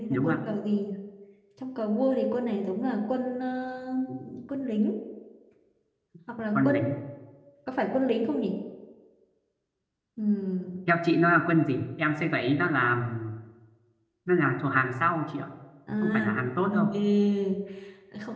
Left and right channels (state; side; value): identical; both; correlation 1.00